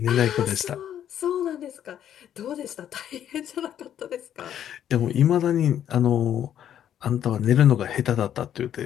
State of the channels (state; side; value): quieter; right; 10.3 dB